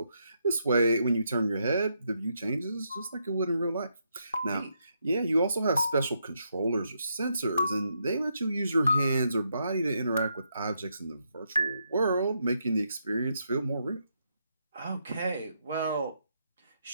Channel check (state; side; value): inverted; both; correlation -0.79